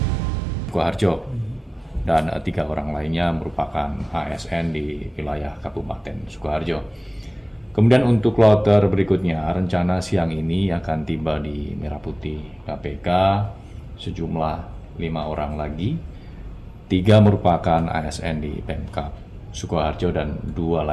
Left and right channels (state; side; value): normal; both; correlation 0.98